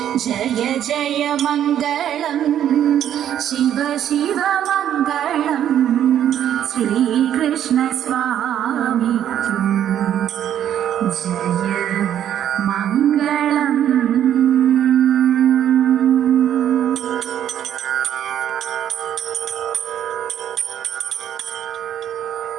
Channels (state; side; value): quieter; left; 10.4 dB